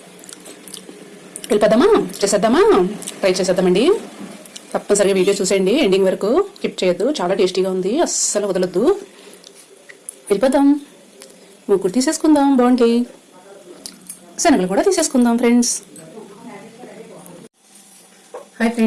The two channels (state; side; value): identical; both; correlation 1.00